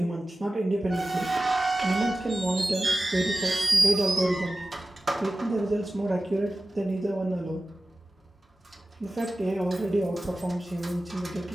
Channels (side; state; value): both; normal; correlation 0.95